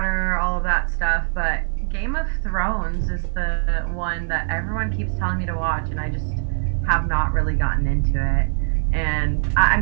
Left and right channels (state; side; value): silent; left; 62 dB below the other